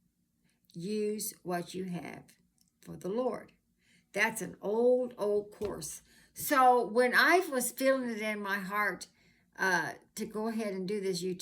Use what you have for the Lord. That's an old course. So when I was feeling it in my heart to go ahead and do this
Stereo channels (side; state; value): both; identical; correlation 1.00